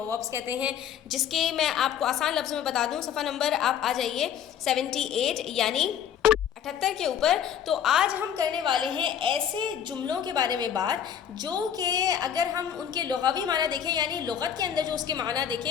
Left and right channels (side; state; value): right; quieter; 8.9 dB